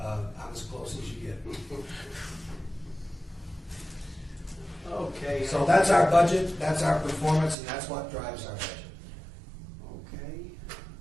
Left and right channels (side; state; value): left; drops out; at 7.6 s